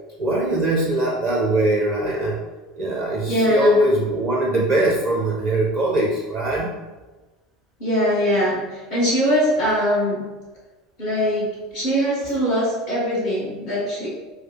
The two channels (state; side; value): normal; both; correlation 0.42